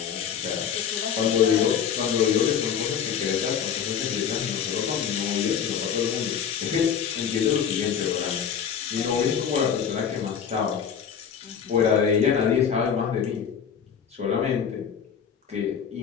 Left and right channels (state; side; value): quieter; right; 7.7 dB